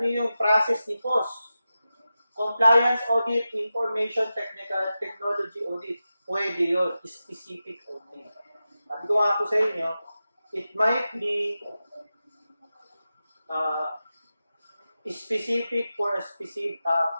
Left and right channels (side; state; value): both; inverted; correlation -0.92